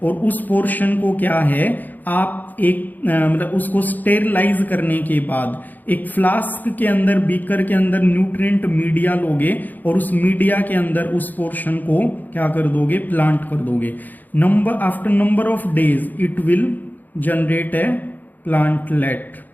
और उस पोर्शन को क्या है, आप एक मतलब उसको स्टेरलाइज करने के बाद एक फ्लास्क के अंदर, बीकर के अंदर न्यूट्रिएंट मीडिया लोगे, और उस मीडिया के अंदर उस पोर्शन को क्या कर दोगे, प्लांट कर दोगे. After number of days it will generate a plantlet.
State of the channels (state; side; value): late; right; 0.085 ms